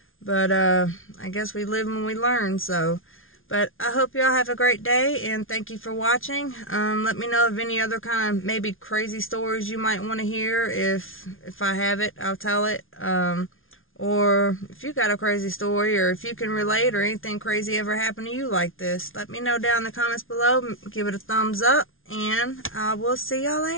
But I guess we live and we learn, so. But I hope y'all have a great day, and thank you for watching. Let me know of any other kind of maybe crazy stories you might want to hear. If I have it, I'll tell it. Or if you got a crazy story, or if you can relate, or anything crazy ever happened to you like this, let me know down in the comments below. Give it a thumbs up, and I will see y'all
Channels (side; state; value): right; late; 0.59 ms